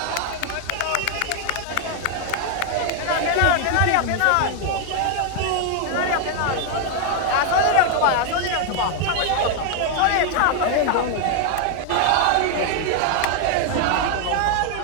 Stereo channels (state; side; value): different; both; correlation 0.00